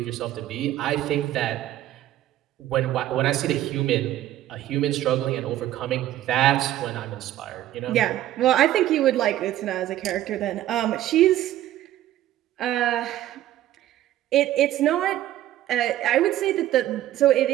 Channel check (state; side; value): quieter; left; 13.4 dB